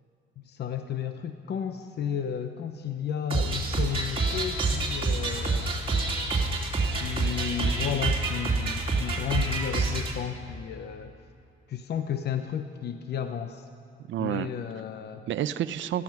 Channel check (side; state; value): both; normal; correlation 0.48